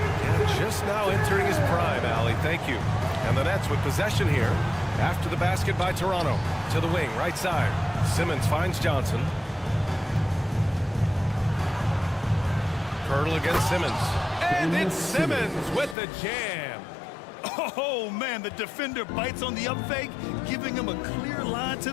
just now entering his prime, Allie. Thank you. And the Nets with possession here. After the basket by Toronto. To the wing, right side. Simmons finds Johnson. Pirtle against Simmons. And it's Simmons with the jam. Oh, man, the defender bites on the up fake, giving him a clear line to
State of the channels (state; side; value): drops out; right; at 16.0 s